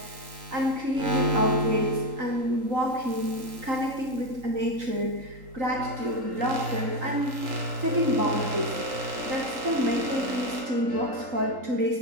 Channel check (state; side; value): late; left; 3.8 ms